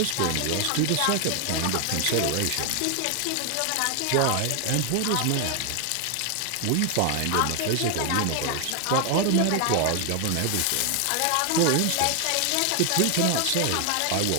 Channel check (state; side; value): different; both; correlation 0.00